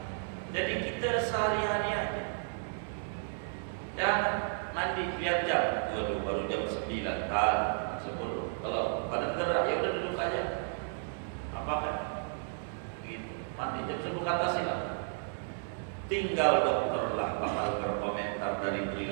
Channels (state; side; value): silent; left; 56 dB below the other